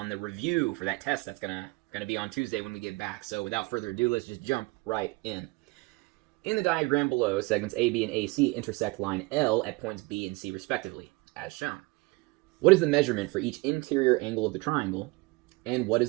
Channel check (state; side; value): quieter; left; 25.2 dB